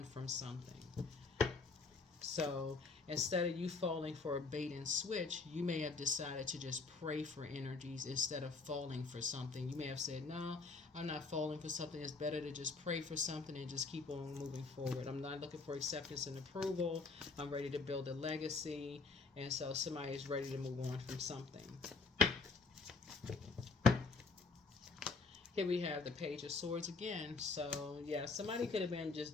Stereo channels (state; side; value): quieter; right; 4.1 dB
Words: from something. So instead of you falling for a bait and switch, you may have decided to just pray for energies instead of falling for something. You may have said, no, I'm not falling for something. It's better to just pray for something and just keep on moving forward. I'm not looking for acceptance and approval. I'm ready to build a legacy. And so somebody is ready to move on from something. Here we have the Page of Swords again. So, yeah, somebody could have been